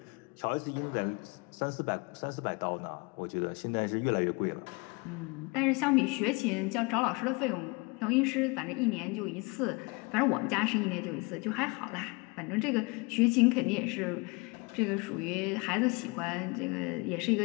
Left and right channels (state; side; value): quieter; right; 28.5 dB